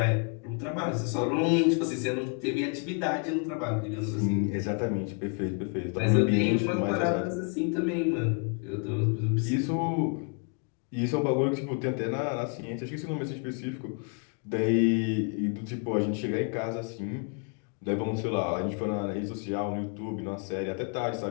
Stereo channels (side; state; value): right; quieter; 38.3 dB